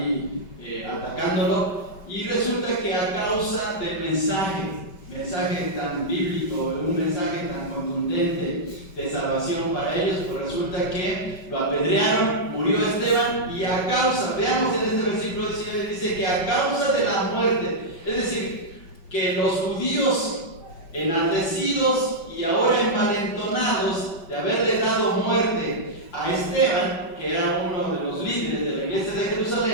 atacándolo. Y resulta que a causa del mensaje tan bíblico, un mensaje tan contundente de salvación para ellos, pues resulta que lo apedrearon, murió Esteban, y a causa, veamos en este versículo 19, dice que a causa de la muerte, es decir, que los judíos enardecidos y ahora envalentonados de haberle dado muerte a Esteban, que era uno de los líderes de la iglesia de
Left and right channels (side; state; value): right; late; 5.2 ms